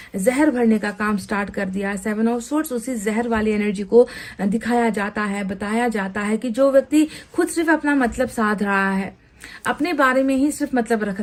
जहर भरने का काम स्टार्ट कर दिया। 7 ऑफ सोर्ड्स उसी जहर वाली एनर्जी को दिखाया जाता है, बताया जाता है कि जो व्यक्ति खुद सिर्फ अपना मतलब साध रहा है, अपने बारे में ही सिर्फ मतलब रख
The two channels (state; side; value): identical; both; correlation 1.00